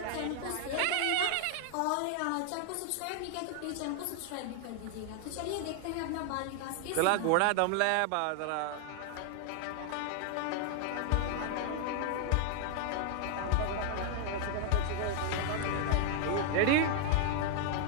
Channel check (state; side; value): different; both; correlation 0.00